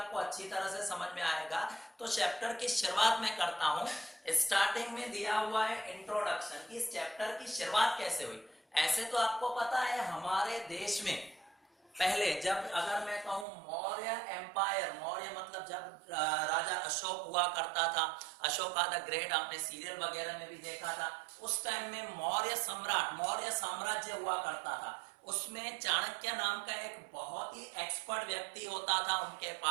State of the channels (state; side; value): drops out; left; at 13.5 s